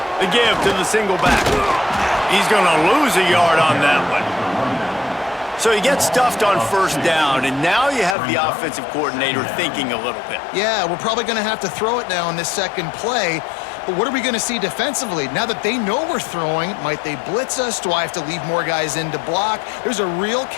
The give to the single back. He's going to lose a yard on that one. So he gets stuffed on 1st down, and now you have the offensive coordinator thinking a little bit. Yeah, we're probably going to have to throw it now in this second play. But what are we going to see defensively? Now that they know we're throwing, might they blitz us? Do I have to leave more guys in to block? There's a real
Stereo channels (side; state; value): right; drops out; at 8.2 s